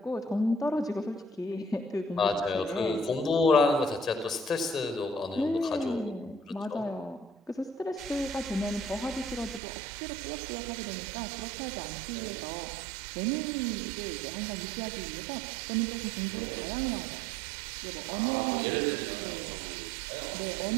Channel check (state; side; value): drops out; left; at 9.6 s